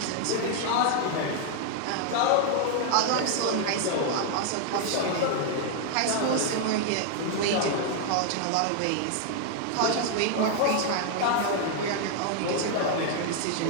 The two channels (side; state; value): both; different; correlation 0.00